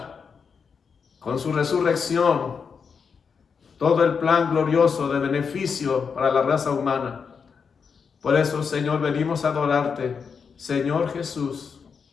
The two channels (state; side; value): quieter; right; 6.0 dB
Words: con su resurrección todo el plan glorioso de beneficio para la raza humana. Por eso, Señor, venimos a adorarte, Señor Jesús,